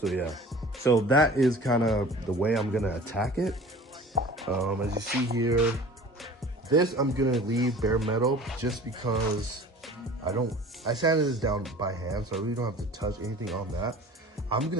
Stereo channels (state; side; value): normal; both; correlation 0.43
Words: yeah, so that is kind of the way I'm gonna attack it. As you see here, this I'm gonna leave bare metal just because I sanded this down by hand, so I really don't have to touch anything on that. I'm